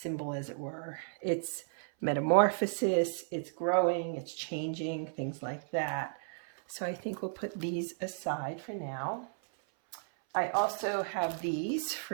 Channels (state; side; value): silent; left; 55 dB below the other